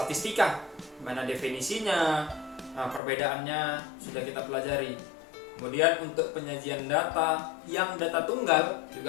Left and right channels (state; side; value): drops out; right; at 3.0 s